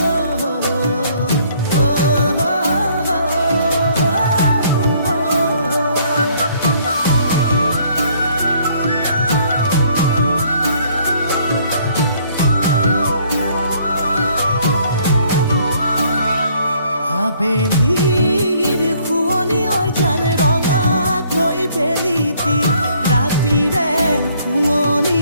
আবেলিৰ শুৱনি অজান ৰঙাকৈ বেলিটি ৰাতিৰে শুৱনি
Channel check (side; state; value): both; inverted; correlation -0.63